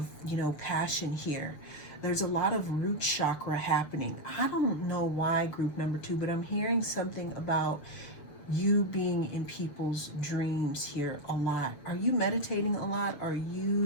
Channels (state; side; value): late; right; 6.8 ms